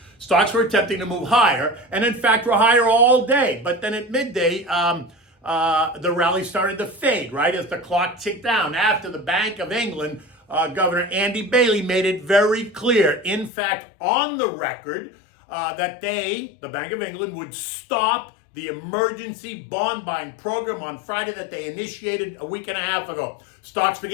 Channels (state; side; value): drops out; right; at 13.5 s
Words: stocks were attempting to move higher, and in fact were higher all day. But then at midday, the rally started to fade, right, as the clock ticked down after the Bank of England, Governor Andy Bailey, made it very clear, in fact, on the record, that the Bank of England, would stop the emergency bond buying program on Friday that they initiated a week and a half ago. Stocks